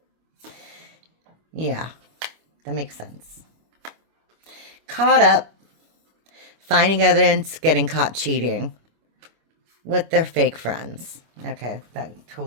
Yeah. That makes sense. Caught up. Finding evidence, getting caught cheating with their fake friends. Okay, that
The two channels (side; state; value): left; late; 25 ms